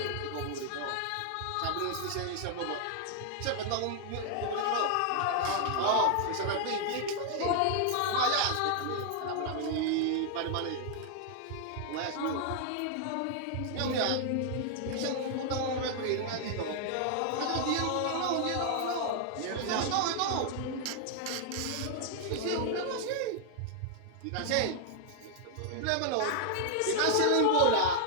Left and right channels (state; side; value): different; both; correlation 0.00